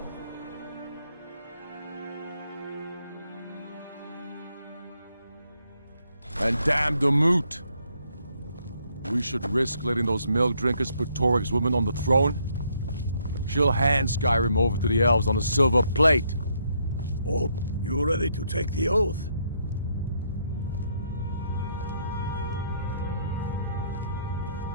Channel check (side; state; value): both; inverted; correlation -0.72